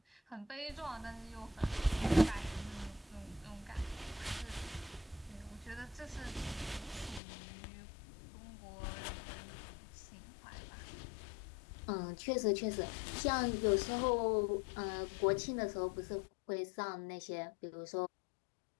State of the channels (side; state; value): right; drops out; at 7.2 s